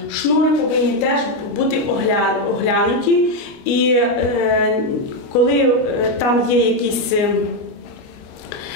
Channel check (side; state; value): right; late; 29 ms